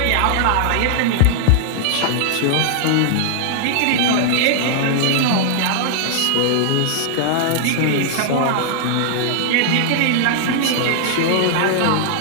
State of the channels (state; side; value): different; both; correlation -0.01